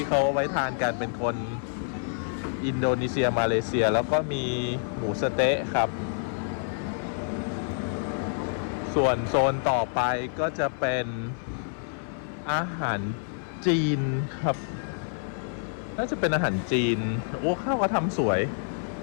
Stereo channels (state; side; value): silent; right; 60 dB below the other